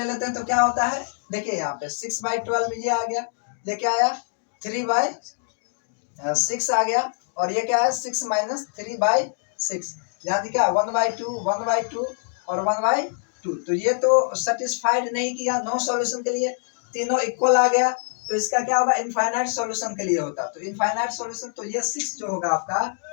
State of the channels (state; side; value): silent; right; digital silence